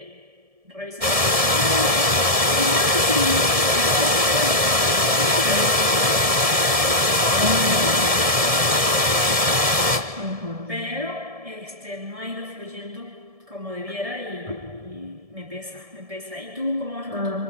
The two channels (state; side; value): late; left; 1.7 ms